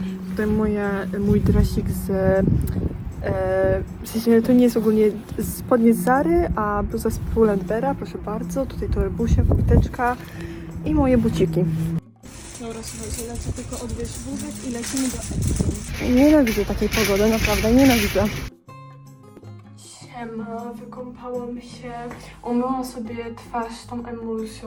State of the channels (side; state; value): both; identical; correlation 1.00